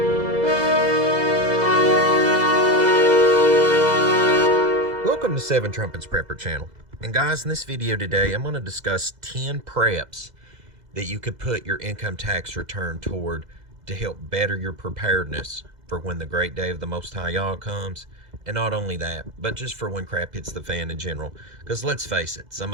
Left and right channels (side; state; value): left; late; 2.0 ms